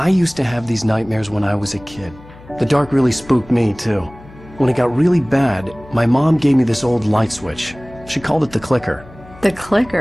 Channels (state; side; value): noise; left; hum, 21 dB below the sound